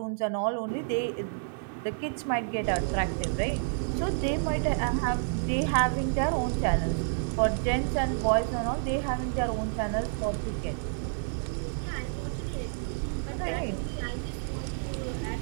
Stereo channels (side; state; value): left; silent; 56 dB below the other